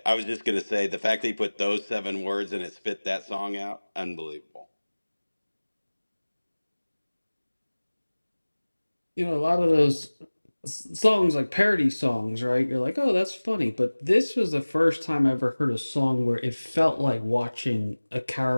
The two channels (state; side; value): inverted; both; correlation -1.00